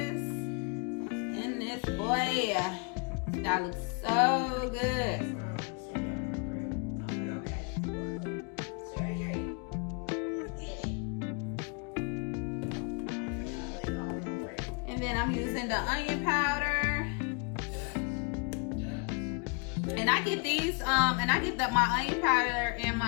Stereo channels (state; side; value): quieter; right; 34.5 dB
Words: And this boy, that looks so good. Then I'm using the onion powder, and I get these and I get my onion powder and